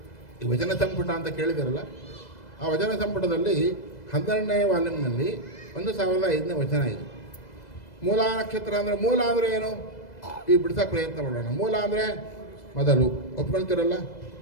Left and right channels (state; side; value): late; right; 2.0 ms